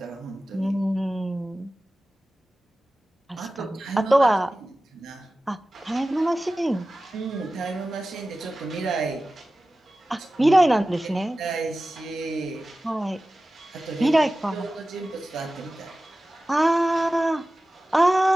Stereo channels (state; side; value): normal; both; correlation 0.96